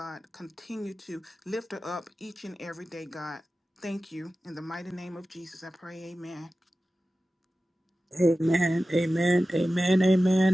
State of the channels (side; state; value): both; normal; correlation 0.95